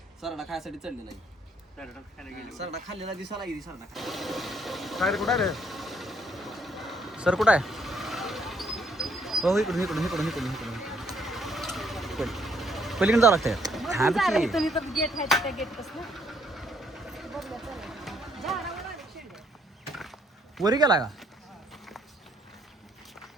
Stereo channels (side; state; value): both; normal; correlation 0.68